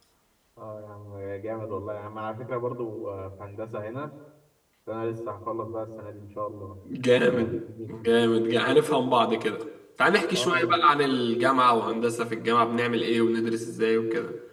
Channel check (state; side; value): identical; both; correlation 1.00